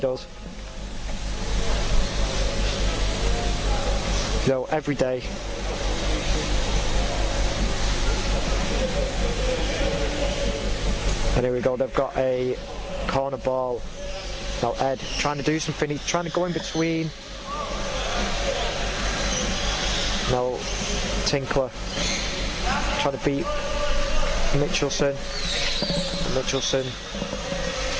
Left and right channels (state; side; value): identical; both; correlation 1.00